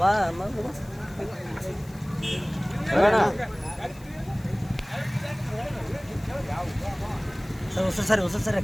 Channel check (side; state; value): left; noise; hiss, 24 dB below the sound